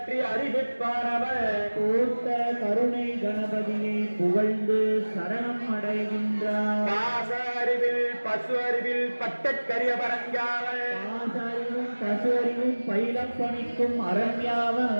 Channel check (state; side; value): inverted; both; correlation -1.00